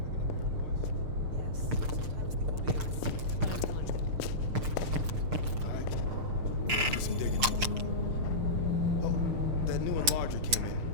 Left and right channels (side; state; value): left; late; 6.6 ms